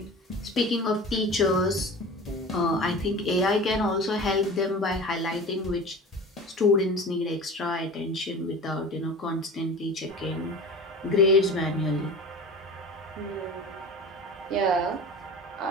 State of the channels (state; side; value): normal; both; correlation 0.35